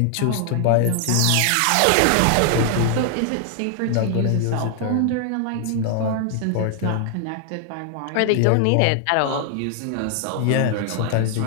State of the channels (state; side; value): different; both; correlation 0.00